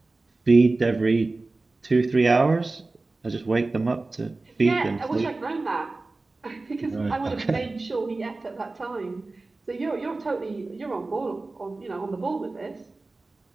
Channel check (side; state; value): left; quieter; 3.4 dB